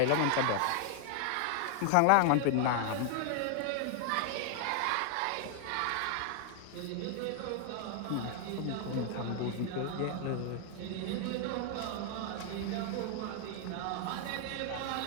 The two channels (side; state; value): both; different; correlation 0.00